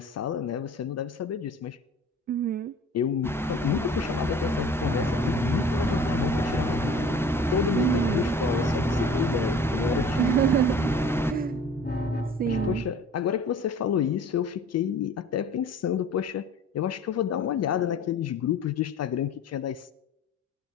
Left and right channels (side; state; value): both; normal; correlation 0.46